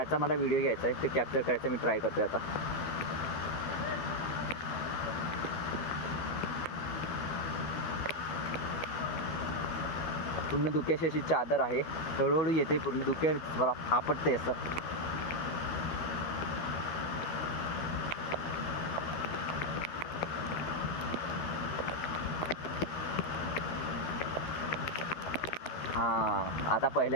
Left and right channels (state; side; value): late; right; 12 ms